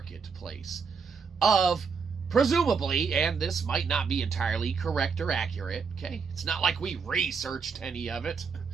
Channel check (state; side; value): quieter; left; 5.6 dB